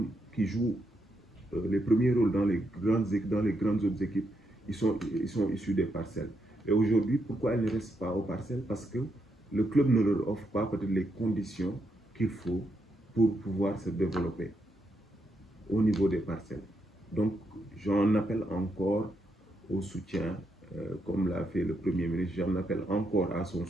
les premiers rôles dans les grandes autres équipes, ils sont issus des parcelles. Et aujourd'hui, pourquoi ils ne restent pas aux parcelles? Parce que le club ne leur offre pas peut-être les conditions qu'il faut pour pouvoir se développer au niveau des parcelles. Donc, j'en appelle encore au soutien, comme l'a fait le Premier ministre, j'en appelle encore à son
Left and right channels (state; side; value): normal; both; correlation 0.80